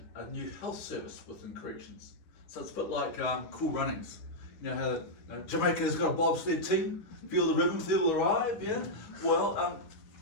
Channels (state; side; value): late; right; 9.9 ms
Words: a new health service within corrections. So it's a bit like Cool Runnings. You know how Jamaica's got a bobsled team, feel the rhythm, feel the ride, yeah? Well,